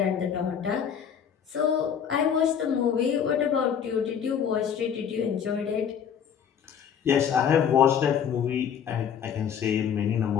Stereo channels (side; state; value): right; quieter; 8.1 dB